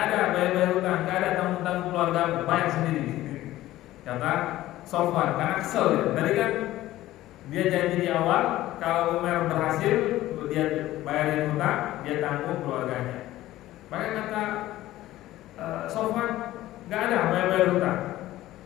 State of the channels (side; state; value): right; quieter; 15.4 dB